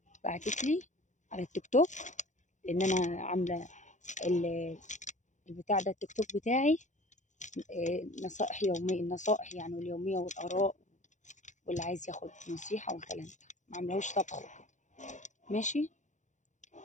بعتت لي على التيك توك، لأن أنا عاملة البتاع ده التيك توك بتاعي. نصائح يومية، النصائح يعني واليومية والآراء، واللي عايز ياخد نصيحة والكلام ده، ما عاملهوش طبخ وكده. ماشي.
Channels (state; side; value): late; right; 0.35 ms